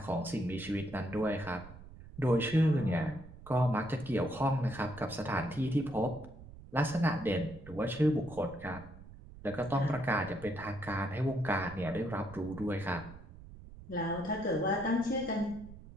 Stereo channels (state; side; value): noise; right; rumble, 17 dB below the sound